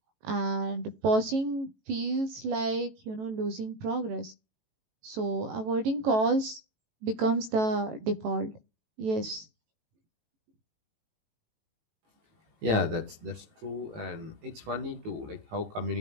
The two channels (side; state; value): left; late; 18 ms